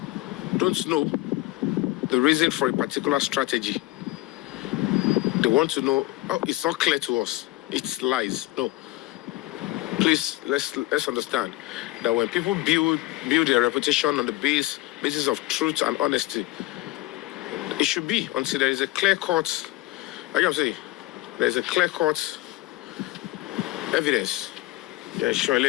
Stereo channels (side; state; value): right; quieter; 18.3 dB